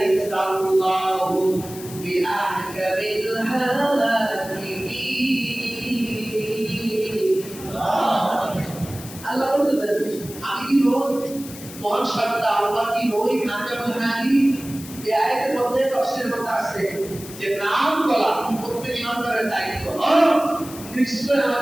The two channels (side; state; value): left; noise; hiss, 15 dB below the sound